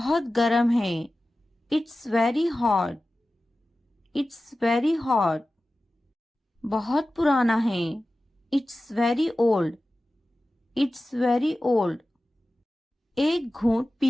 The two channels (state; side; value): normal; both; correlation 0.95